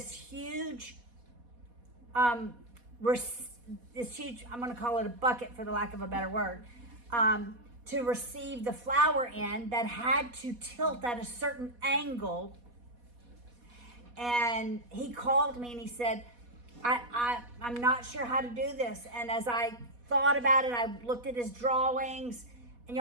huge, I'm going to call it a bucket for the lack of a better word, to receive the flour in, that had to tilt at a certain angle. And he called me and he said, I'm not sure how to do this. And as I thought about it, I looked at his drawings, and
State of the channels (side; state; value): left; late; 4.1 ms